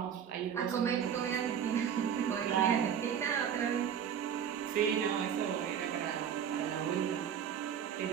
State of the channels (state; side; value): quieter; left; 8.5 dB